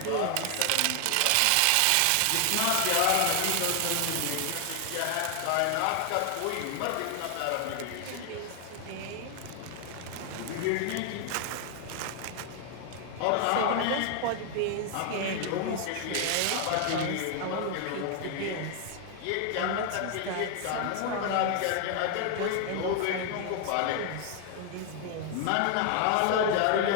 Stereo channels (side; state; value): both; different; correlation 0.00